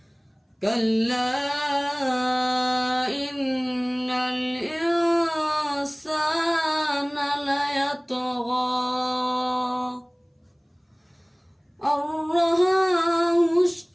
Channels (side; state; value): both; identical; correlation 1.00